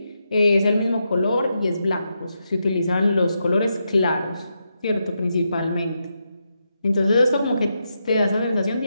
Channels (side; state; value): both; inverted; correlation -0.84